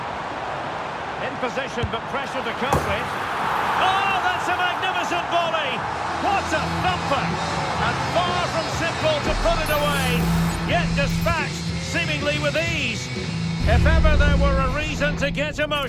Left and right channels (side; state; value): both; identical; correlation 1.00